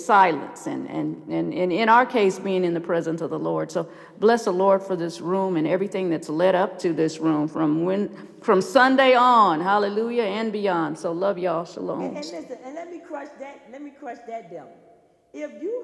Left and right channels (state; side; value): identical; both; correlation 1.00